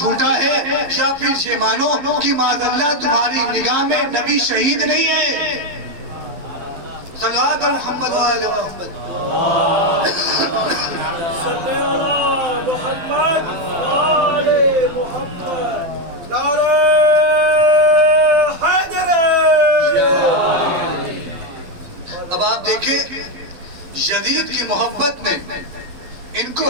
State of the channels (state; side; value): late; left; 11 ms